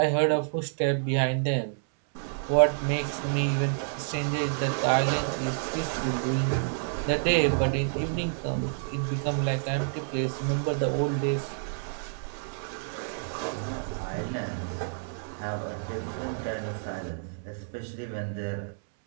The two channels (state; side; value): silent; left; 59 dB below the other